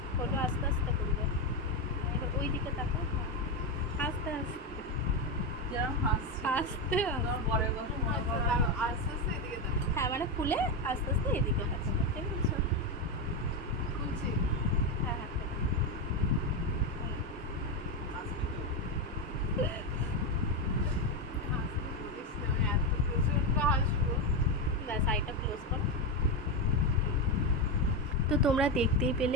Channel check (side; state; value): both; normal; correlation 0.11